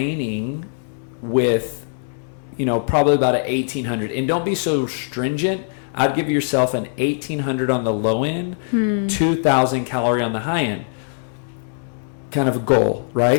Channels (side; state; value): right; silent; digital silence